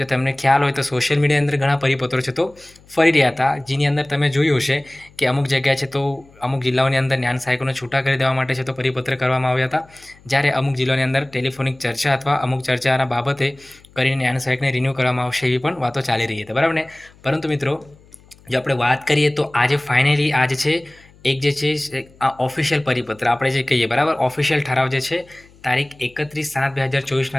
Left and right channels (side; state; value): left; noise; hum, 27 dB below the sound